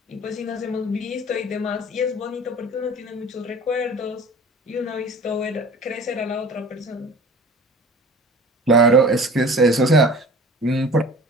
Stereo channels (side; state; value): both; normal; correlation 0.42